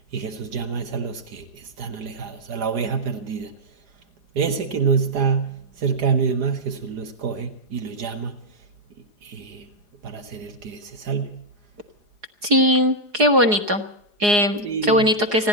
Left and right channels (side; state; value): left; late; 4.8 ms